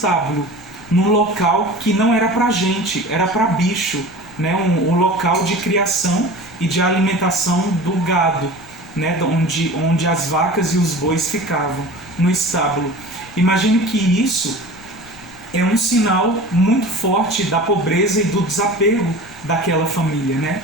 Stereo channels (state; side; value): noise; left; rumble, 23 dB below the sound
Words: num local que não era para gente, era para bicho, né? Um local de criação e de alimentação do gado, né? onde as vacas e os bois ficavam, no estábulo. Imagine que isso é um sinal muito forte da pobreza e do desapego daquela família, né?